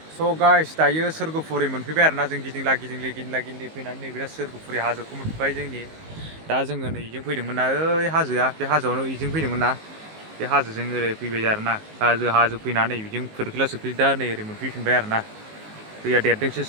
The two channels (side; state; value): left; late; 19 ms